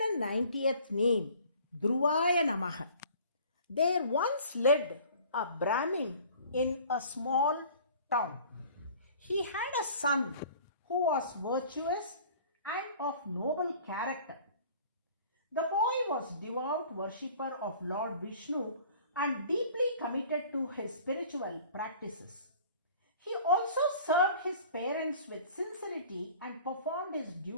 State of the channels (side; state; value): both; inverted; correlation -0.49